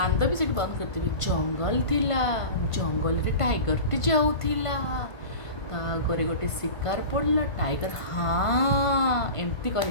भी सेठी बंद करते जंगल थिला जंगल रे टाइगर टी जाऊला तागरे गोटे शिकार पड़ला टाइगर हाँ एमती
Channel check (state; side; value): late; right; 1.5 ms